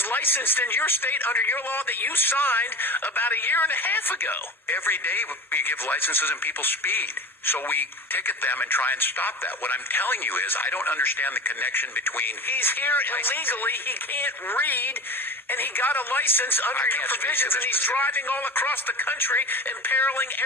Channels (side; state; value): both; normal; correlation 0.32